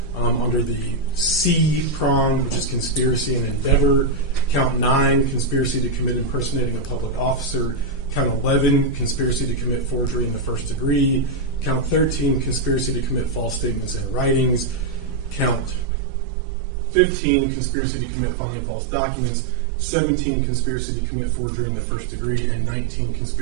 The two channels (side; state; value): left; drops out; at 15.9 s